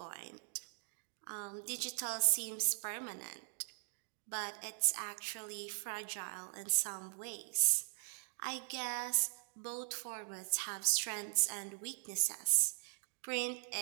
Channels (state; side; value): silent; left; digital silence